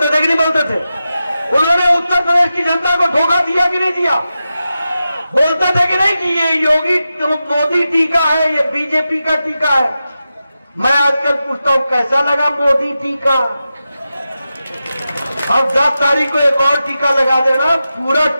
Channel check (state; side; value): inverted; both; correlation -0.91